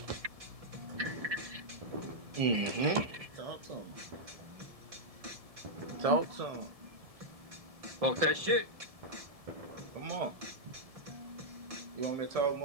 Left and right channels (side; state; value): left; late; 1.7 ms